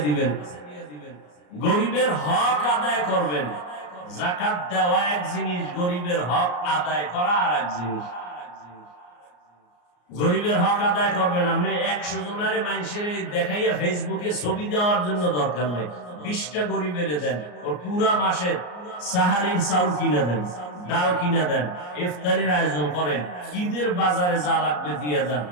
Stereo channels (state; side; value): late; right; 34 ms